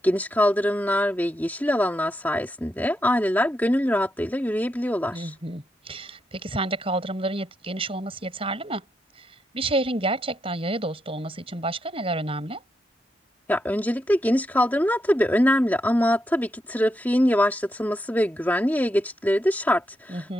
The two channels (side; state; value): both; normal; correlation 0.82